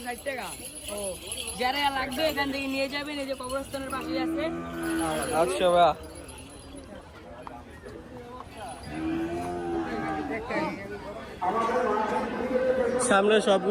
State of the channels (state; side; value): identical; both; correlation 1.00